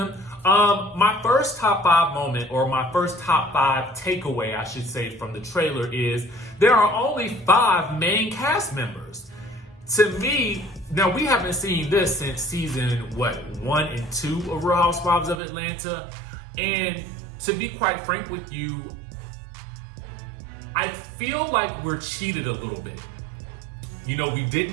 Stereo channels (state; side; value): drops out; left; at 15.4 s